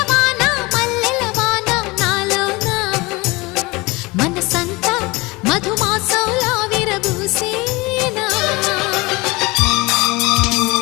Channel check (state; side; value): quieter; right; 23.8 dB